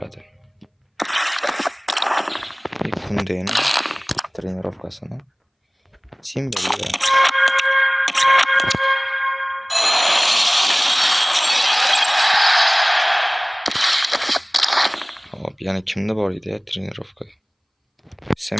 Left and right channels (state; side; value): identical; both; correlation 1.00